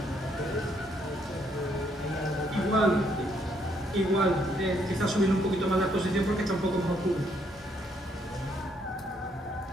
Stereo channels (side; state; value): both; normal; correlation 0.71